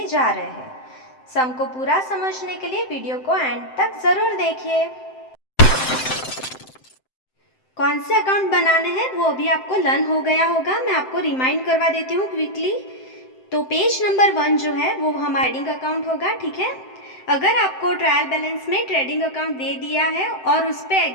जा रहे हैं। सम को पूरा समझने के लिए वीडियो को एंड तक ज़रूर देखिए। कौन से अकाउंट बनाने हैं वो अभी आपको लर्न हो गया होगा, मैं आपको रिमाइंड करवा देती हूँ क्विकली। तो पेज नंबर 1 जो है वो हमारा ट्रेडिंग अकाउंट होगा, ठीक है। अगर आपको ट्रायल बैलेंस में ट्रेडिंग अकाउंट दे दिया है और उस पर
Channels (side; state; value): right; late; 7.7 ms